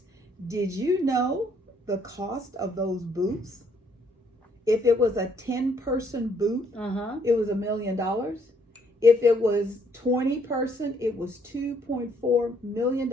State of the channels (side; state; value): both; normal; correlation 0.67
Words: Did you know the cost of those booths? If it was a 10-person booth, it was $1 million. If it was 20-person, it was $2.4 million